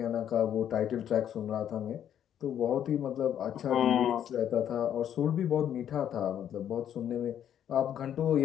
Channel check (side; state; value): right; quieter; 9.9 dB